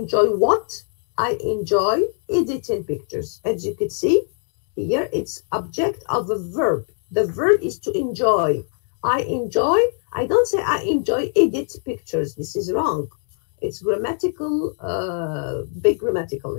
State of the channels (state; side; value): silent; right; digital silence